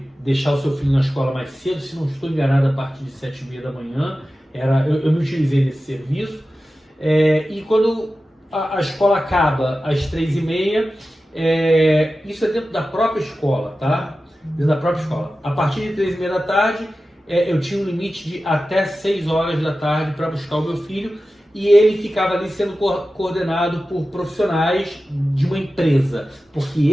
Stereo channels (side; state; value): both; normal; correlation 0.94